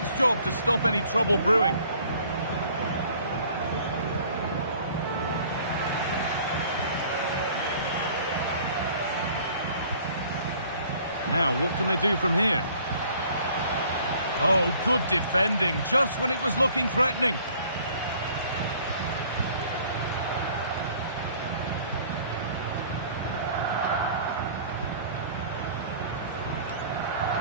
job to stop any trouble brewing. Now, what can they do from here? Oh, good defending, just when it was looking threatening.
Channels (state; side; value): inverted; both; correlation -0.54